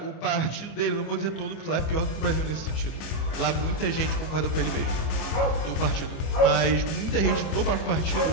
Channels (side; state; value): right; late; 25 ms